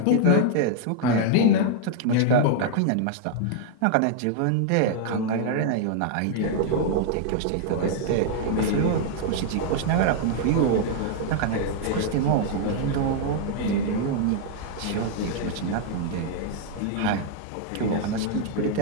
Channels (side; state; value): both; different; correlation -0.01